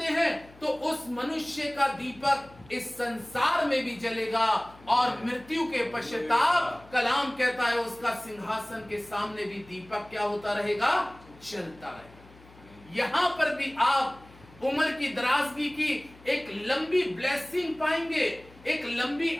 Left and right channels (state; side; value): noise; left; hum, 23 dB below the sound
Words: हैं, तो उस मनुष्य का दीपक इस संसार में भी जलेगा और मृत्यु के पश्चाताप, कलाम कहता है, उसका सिंहासन के सामने भी दीपक क्या होता रहेगा? जलता रहेगा। यहां पर भी आप उम्र की दराजगी की एक लंबी ब्लेसिंग पाएंगे, एक लंबी